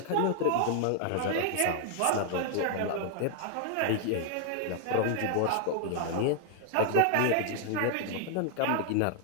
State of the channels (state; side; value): different; both; correlation 0.00